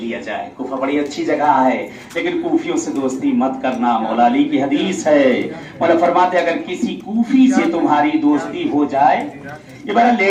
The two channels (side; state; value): both; identical; correlation 1.00